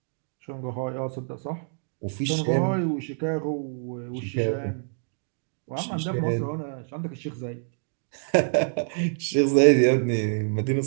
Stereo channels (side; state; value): left; silent; digital silence